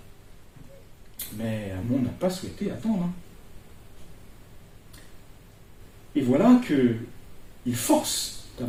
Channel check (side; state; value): both; identical; correlation 1.00